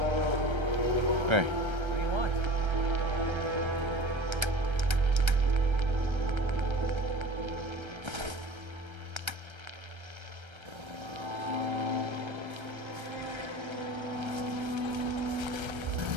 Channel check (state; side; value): late; left; 1.3 ms